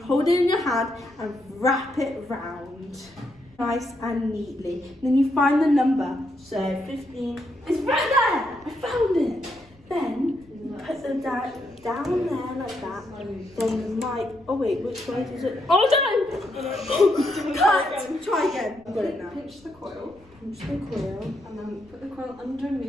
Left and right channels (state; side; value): noise; left; rumble, 28 dB below the sound